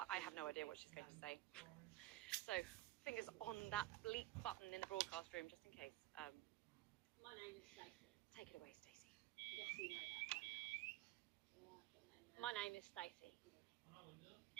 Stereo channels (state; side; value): quieter; left; 16.7 dB